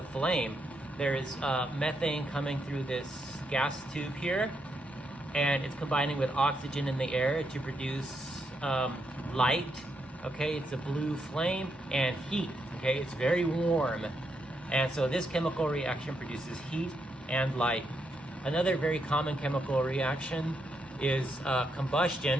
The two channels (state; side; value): normal; both; correlation 0.80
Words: flame. There is methane coming through this gas tube here, and it's combining with oxygen in the air to produce light. Okay, it's a blue flame and heat. Okay, it's very warm. And so this chemical reaction produces heat and light. Another very common chemical reaction is